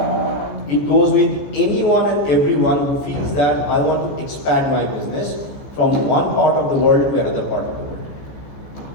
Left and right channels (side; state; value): right; late; 14 ms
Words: It goes with anyone and everyone who feels that I want to expand my business from one part of the world to another part of the world.